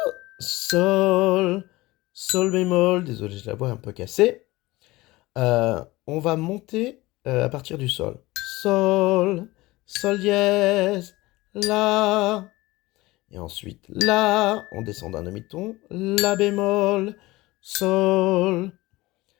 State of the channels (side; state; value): right; quieter; 19.9 dB